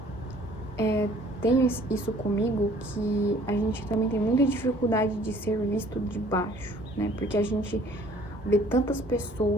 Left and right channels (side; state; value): both; normal; correlation 0.55